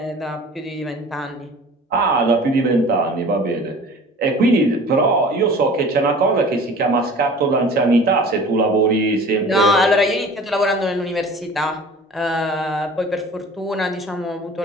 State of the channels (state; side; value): normal; both; correlation 0.43